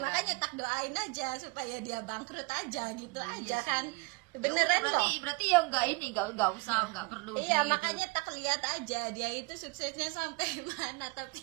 tak doain aja supaya dia bangkrut aja gitu aja sih. kan. Ya Beneran udah, kok. berarti ya nggak usah nggak perlu Iya, makanya tak lihat aja dia itu suksesnya sampai mana,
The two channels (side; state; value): left; quieter; 26.0 dB